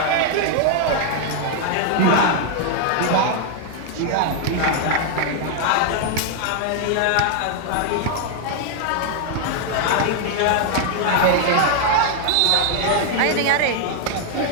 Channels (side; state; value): both; different; correlation 0.00